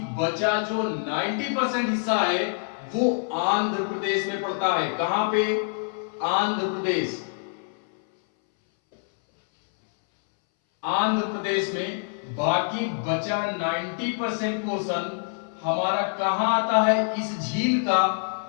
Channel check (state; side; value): silent; right; 60 dB below the other